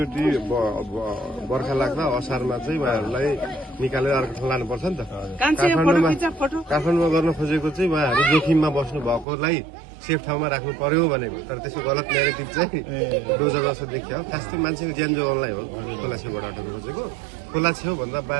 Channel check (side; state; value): left; drops out; at 9.2 s